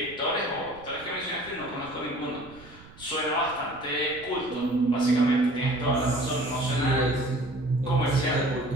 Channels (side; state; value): right; noise; rumble, 21 dB below the sound